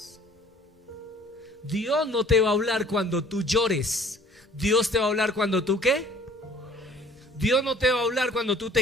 Dios no te va a hablar cuando tú llores. Dios te va a hablar cuando tú ¿qué? Dios no te va a hablar cuando tú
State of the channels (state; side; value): normal; both; correlation 0.52